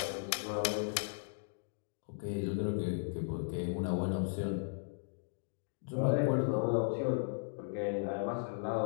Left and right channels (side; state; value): right; silent; digital silence